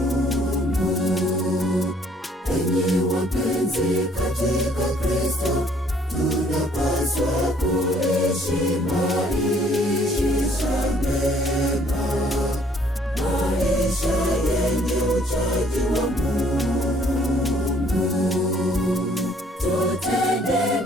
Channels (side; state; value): both; normal; correlation 0.62